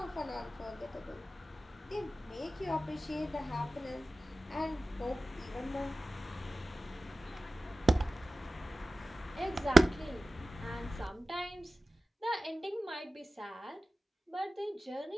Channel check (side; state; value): both; normal; correlation 0.95